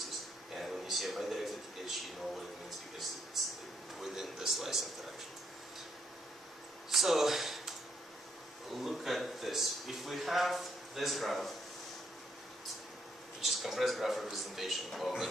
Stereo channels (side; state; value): both; normal; correlation 0.73